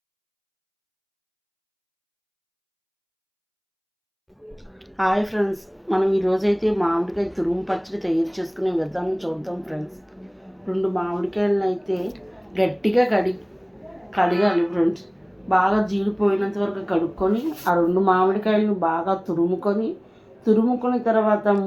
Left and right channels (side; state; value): both; identical; correlation 1.00